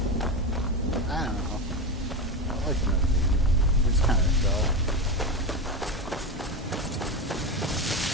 I don't know. I like Indonesia. It's kind of dull.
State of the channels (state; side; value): normal; both; correlation 0.18